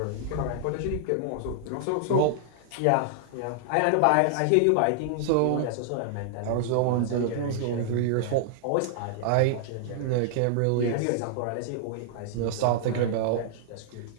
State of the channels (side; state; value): both; different; correlation -0.01